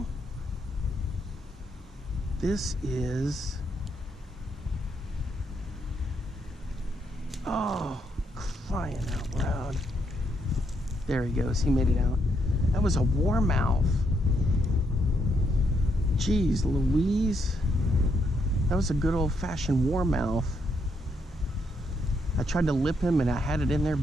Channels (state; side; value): normal; both; correlation 0.77